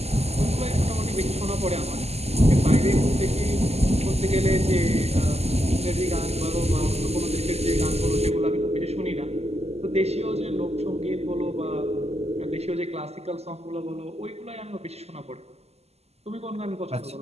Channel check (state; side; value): late; left; 0.30 ms